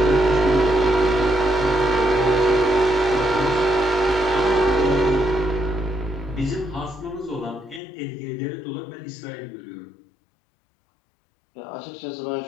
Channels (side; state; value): right; drops out; at 7.8 s